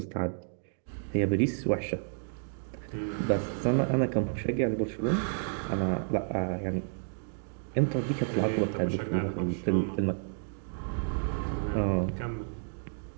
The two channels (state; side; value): silent; left; digital silence